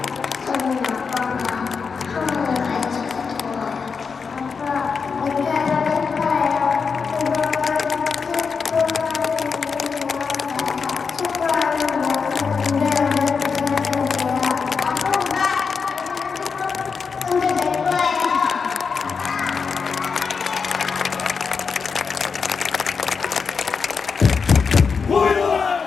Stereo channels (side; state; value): right; quieter; 5.5 dB